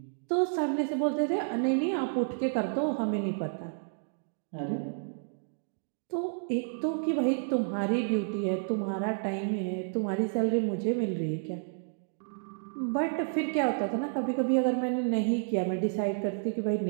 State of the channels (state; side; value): silent; left; digital silence